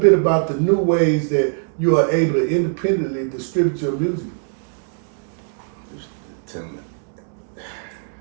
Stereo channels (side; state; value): left; silent; digital silence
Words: about the new ways that you are able to independently distribute your music.